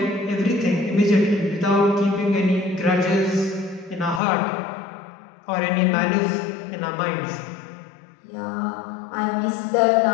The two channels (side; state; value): right; drops out; at 4.2 s